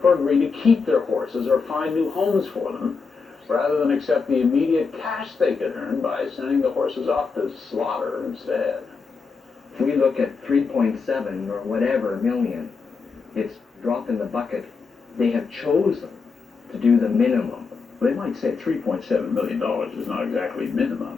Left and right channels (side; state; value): right; quieter; 4.9 dB